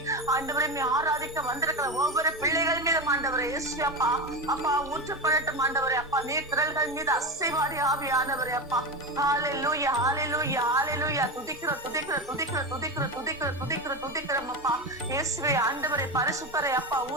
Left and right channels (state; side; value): normal; both; correlation 0.20